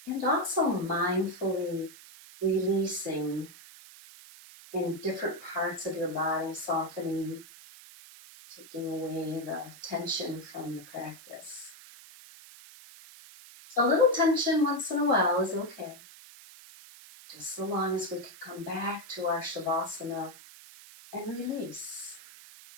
and also mindfully releasing in different parts of your body, softening, taking away the tension from the practice. A little tension once in a while is okay, just so long as we can come back to our Shavasana and release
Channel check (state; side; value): noise; right; hiss, 18 dB below the sound